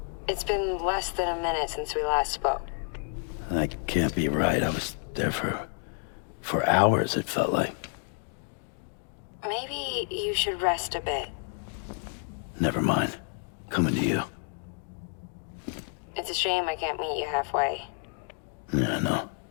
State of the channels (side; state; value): right; silent; 58 dB below the other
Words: It's been less than a minute since we last spoke. That can't be right. I was there for hours, it felt like. Maybe you should rest a bit. Never mind. Coming to you. It's a shame I can't meet you halfway. Yeah, I know.